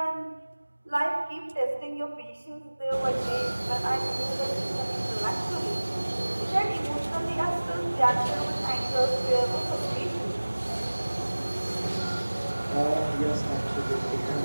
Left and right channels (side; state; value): both; inverted; correlation -1.00